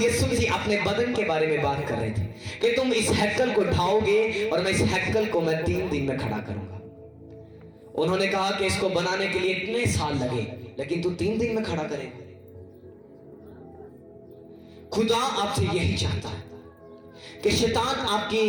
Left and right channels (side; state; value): both; identical; correlation 1.00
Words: मसीह अपने बदन के बारे में बात कर रहे थे कि तुम इस हैकल को ढाओगे और मैं इस हैकल को मैं 3 दिन में खड़ा करूंगा। उन्होंने कहा कि इसको बनाने के लिए इतने साल लगे, लेकिन तू 3 दिन में खड़ा करेगा। खुदा आपसे यही चाहता है कि शैतान